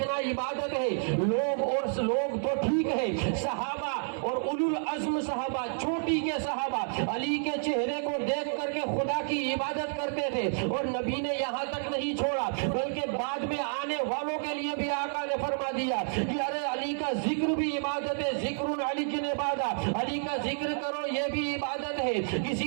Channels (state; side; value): silent; left; 58 dB below the other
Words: عبادت ہے۔ لوگ تو ٹھیک ہے، صحابہ اور اولو العزم صحابہ، چھوٹی کے صحابہ علی کے چہرے کو دیکھ کر کے خدا کی عبادت کرتے تھے، اور نبی نے یہاں تک نہیں چھوڑا بلکہ بعد میں آنے والوں کے لیے بھی آقا نے فرما دیا کہ ارے علی کا ذکر بھی عبادت ہے، ذکر علی کی عبادت، علی کا ذکر کرو یہ بھی عبادت ہے۔ کسی